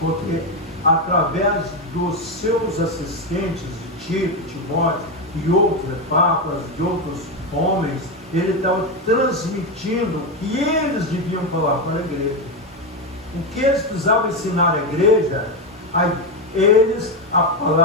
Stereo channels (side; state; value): both; normal; correlation 0.10